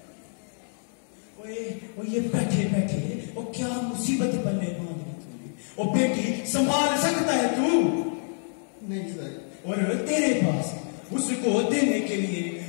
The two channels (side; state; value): right; silent; 60 dB below the other